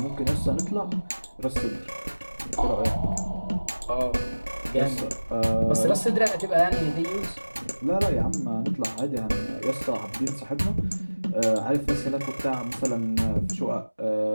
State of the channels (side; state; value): both; inverted; correlation -1.00